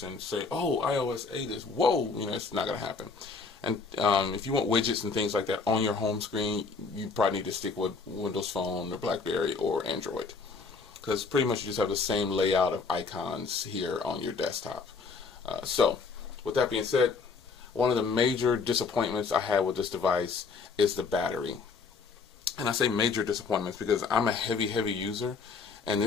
say, oh, iOS 8 is, whoa, you know, it's not going to happen. And if you want widgets and things like that on your home screen, you probably need to stick with Windows Phone or BlackBerry or Android, because pretty much you just have the same layout of icons here on your desktop. So with that being said, one of the major disappointments I had with this device is the battery. And I say major disappointments because I'm a heavy user, and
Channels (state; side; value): quieter; right; 4.8 dB